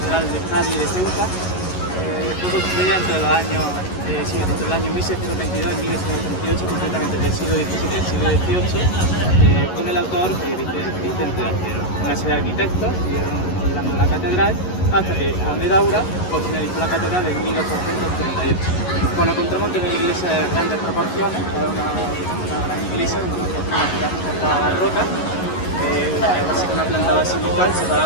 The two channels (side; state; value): right; late; 11 ms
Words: de Cádiz de Ceuta. Fue construida entre los años, entre el año 1622 y 1638, concretamente del siglo XVII y del siglo XVIII, con el autor Vicente de Acero. Una serie de arquitectos siguieron remodelando la catedral hasta que Juan de Daura finalizó la catedral en 1838. Bueno, encontramos una iglesia de grandes proporciones, una gran iglesia, una arquitectura barroca, así que una planta basilical separada